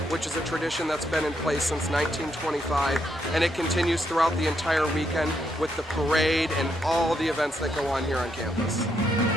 which is a tradition that's been in place since 1925, and it continues throughout the entire weekend with the parade and all the events that go on here on campus.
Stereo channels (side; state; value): both; normal; correlation 0.78